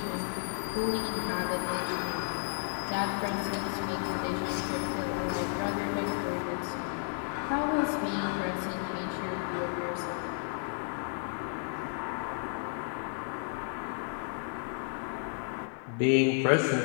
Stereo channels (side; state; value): right; silent; 56 dB below the other